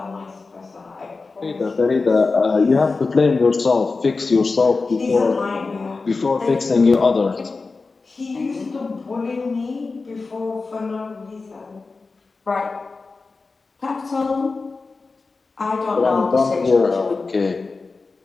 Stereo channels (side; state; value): right; quieter; 4.0 dB